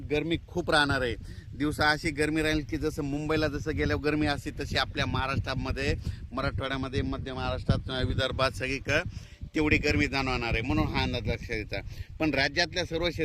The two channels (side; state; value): both; identical; correlation 1.00